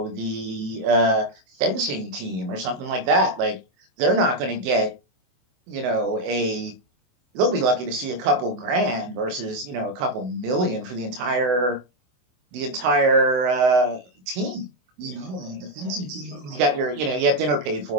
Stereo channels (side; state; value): left; late; 24 ms